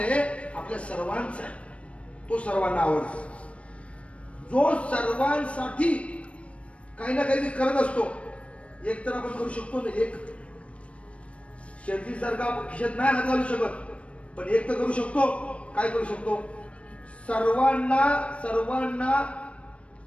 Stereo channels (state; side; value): late; right; 0.062 ms